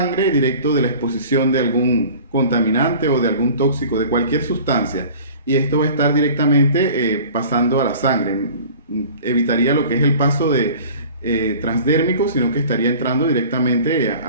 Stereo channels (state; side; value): inverted; both; correlation -0.44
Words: directo de la exposición de algún contaminante o de algún tóxico, de cualquier sustancia, y esto va a estar directamente pasando a la sangre. Evitaría lo que es el paso transdérmico, sino que estaría entrando directamente